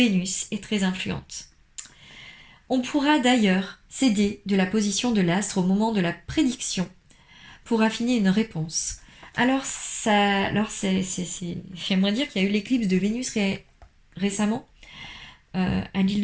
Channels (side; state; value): both; identical; correlation 1.00